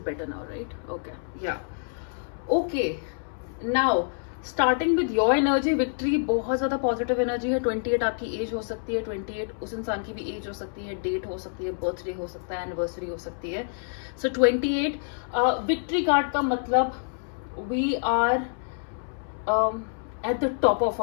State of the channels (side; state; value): right; silent; 60 dB below the other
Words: now, right? Okay, yeah. Okay, now starting with your energy, victory बहुत ज्यादा पॉजिटिव एनर्जी है. 28 आपकी एज हो सकती है, 28 उस इंसान की भी एज हो सकती है, डेट हो सकती है, बर्थडे हो सकता है, एनिवर्सरी हो सकती है. सो 28 विक्ट्री कार्ड का मतलब we are at the top of